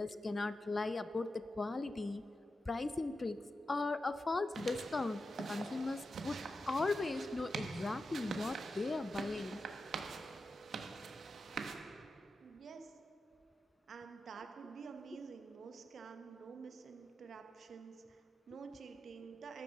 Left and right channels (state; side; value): normal; both; correlation 0.90